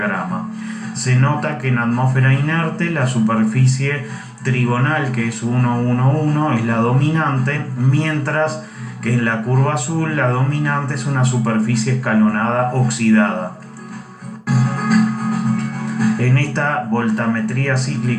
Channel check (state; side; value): identical; both; correlation 1.00